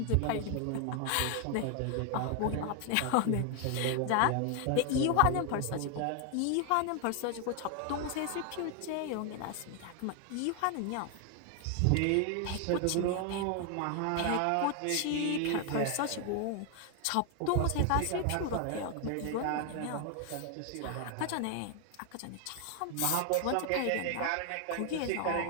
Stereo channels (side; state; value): both; different; correlation 0.00